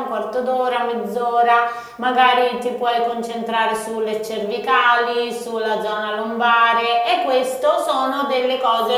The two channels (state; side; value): identical; both; correlation 1.00